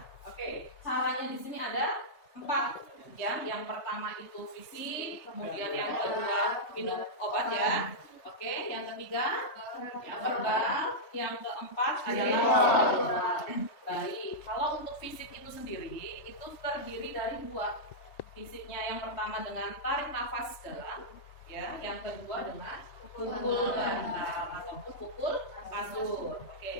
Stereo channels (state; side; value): late; right; 3.2 ms